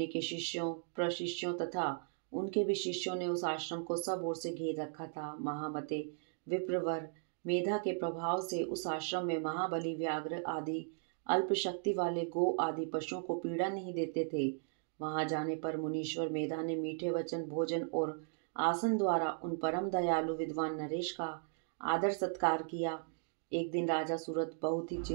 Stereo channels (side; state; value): left; silent; digital silence